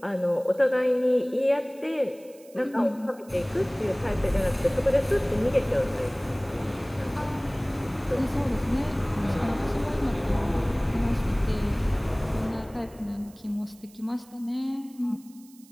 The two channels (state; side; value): noise; right; hiss, 26 dB below the sound